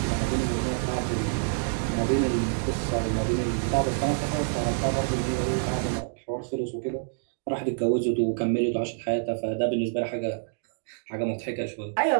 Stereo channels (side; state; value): left; silent; digital silence